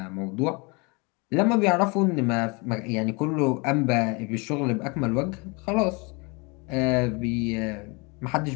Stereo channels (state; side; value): quieter; right; 29.5 dB